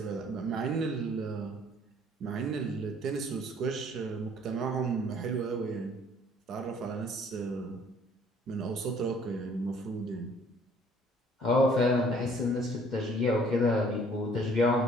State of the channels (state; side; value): normal; both; correlation 0.58